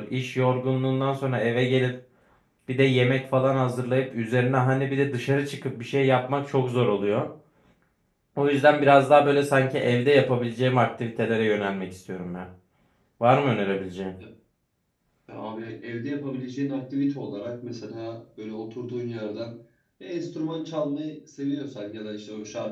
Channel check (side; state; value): both; identical; correlation 1.00